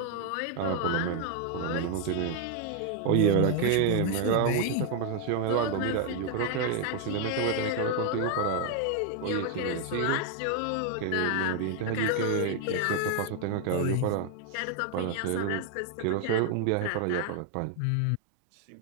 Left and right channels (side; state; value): both; different; correlation 0.01